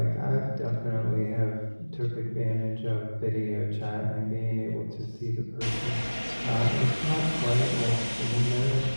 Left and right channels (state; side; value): inverted; both; correlation -1.00